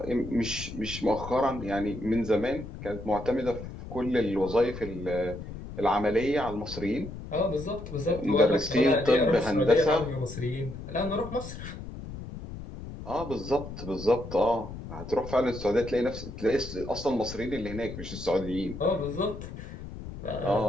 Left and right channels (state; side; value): noise; left; rumble, 11 dB below the sound